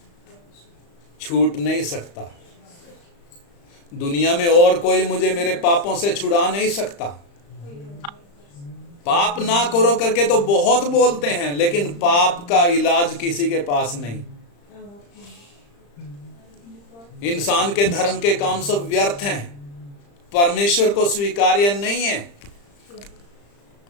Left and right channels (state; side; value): late; right; 35 ms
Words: छूट नहीं सकता। दुनिया में और कोई मुझे मेरे पापों से छुड़ा नहीं सकता। पाप ना करो करके तो बहुत बोलते हैं, लेकिन पाप का इलाज किसी के पास नहीं। इंसान के धर्म के काम सब व्यर्थ हैं, परमेश्वर को स्वीकार्य नहीं है।